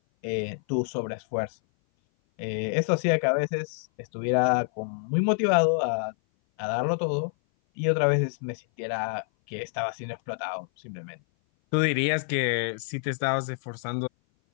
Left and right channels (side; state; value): right; silent; 57 dB below the other